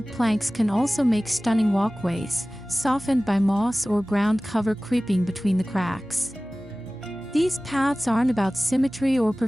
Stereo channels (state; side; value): normal; both; correlation 0.98